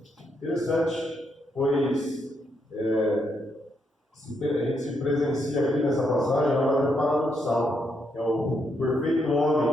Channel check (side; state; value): both; normal; correlation 0.78